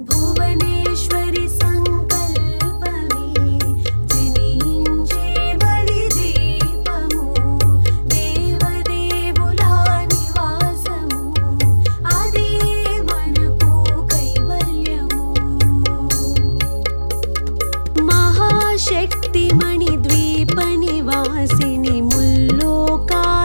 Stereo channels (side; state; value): both; inverted; correlation -1.00